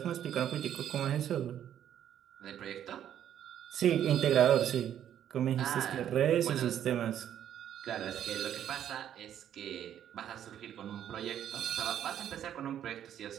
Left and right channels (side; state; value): left; quieter; 10.4 dB